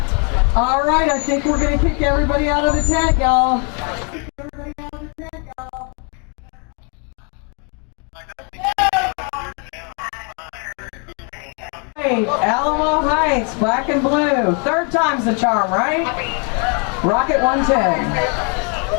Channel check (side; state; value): right; quieter; 37.4 dB